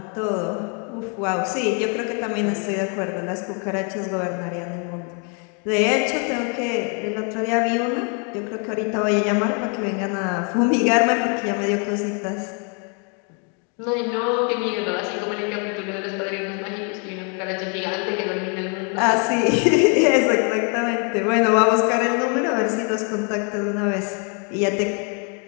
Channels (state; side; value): quieter; right; 37.6 dB